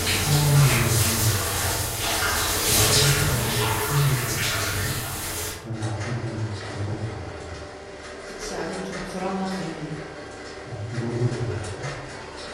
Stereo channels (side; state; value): both; identical; correlation 1.00